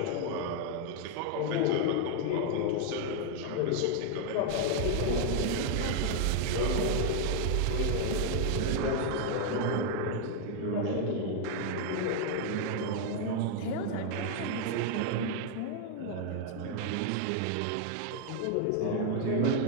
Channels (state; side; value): different; both; correlation 0.00